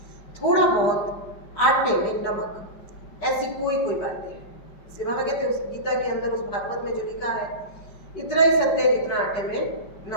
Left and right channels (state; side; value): late; right; 5.2 ms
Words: थोड़ा बहुत आटे में नमक, ऐसी कोई बातें हैं। इसलिए बाबा कहते हैं उस गीता के अंदर, उस भागवत में जो लिखा है इतना ही सत्य है जितना आटे में